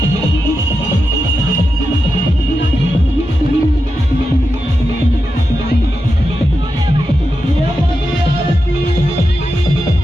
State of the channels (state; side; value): normal; both; correlation 0.89